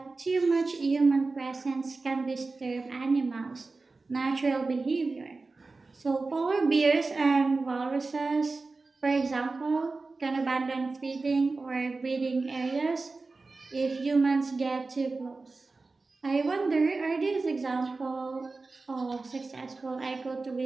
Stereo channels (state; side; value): quieter; left; 3.7 dB